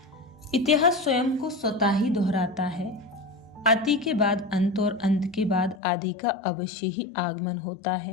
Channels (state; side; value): drops out; right; at 5.8 s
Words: इतिहास स्वयं को स्वतः ही दोहराता है। अति के बाद अंत और अंत के बाद आदि का अवश्य ही आगमन होता